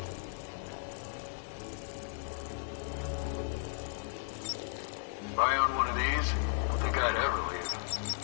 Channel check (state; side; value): silent; right; digital silence